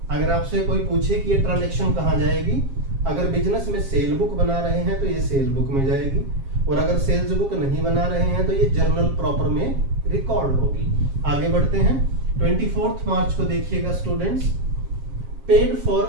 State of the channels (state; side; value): late; left; 7.4 ms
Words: अगर आपसे कोई पूछे कि ये ट्रांजैक्शन कहां जाएगी, अगर बिजनेस में सेल बुक बना रहे हैं तो ये सेल बुक में जाएगी, और अगर सेल्स बुक नहीं बना रहे हैं तो ये जर्नल प्रॉपर में रिकॉर्ड होगी। आगे बढ़ते हैं 24 मार्च को देखिएगा students, paid